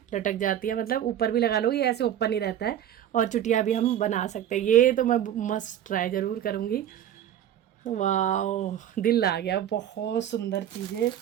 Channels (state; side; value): quieter; left; 10.7 dB